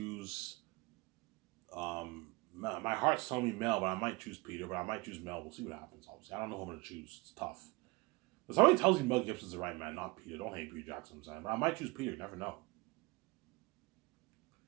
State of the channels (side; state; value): left; quieter; 24.6 dB